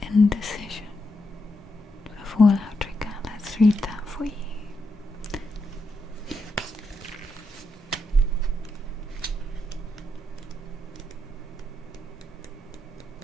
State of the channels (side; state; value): both; normal; correlation 0.82